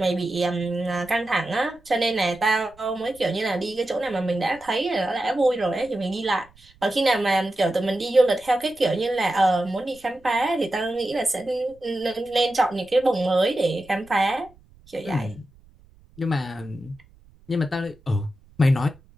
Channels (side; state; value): right; noise; rumble, 28 dB below the sound